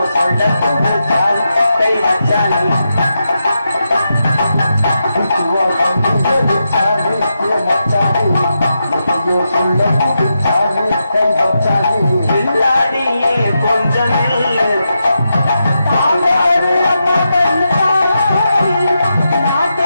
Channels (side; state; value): both; inverted; correlation -0.86